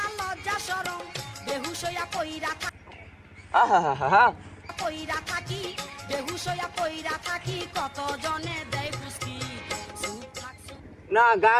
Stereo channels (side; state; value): both; identical; correlation 1.00